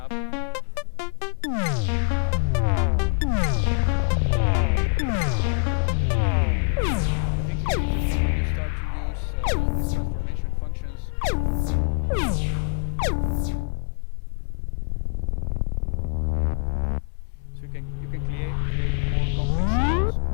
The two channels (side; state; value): right; silent; 61 dB below the other